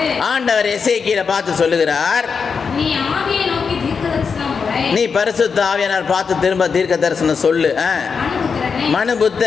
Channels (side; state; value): right; quieter; 5.7 dB